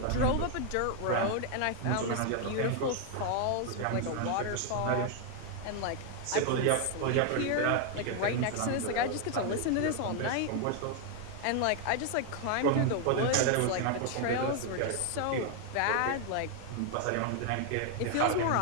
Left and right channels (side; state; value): both; different; correlation 0.00